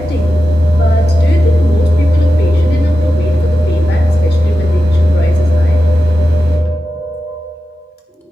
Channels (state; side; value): normal; both; correlation 0.92